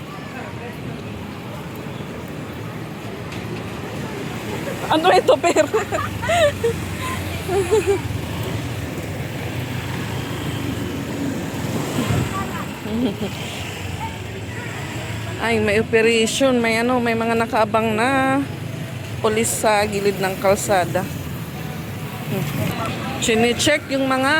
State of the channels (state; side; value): identical; both; correlation 1.00